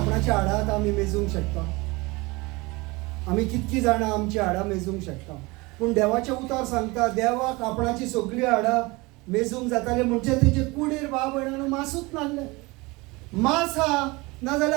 आपणाच्या हाडांत आमी मेजूंक शकता. आमी कितकी जाणां आमची हाडां मेजूंक शकता. पूण देवाचें उतर सांगता देवाक आपणाची सगळीं हाडां मेजूंक जाताले म्हणजे तेजे कुडीर भाव भयणांनो मासूच नासले. मांस हा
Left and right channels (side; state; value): left; quieter; 24.0 dB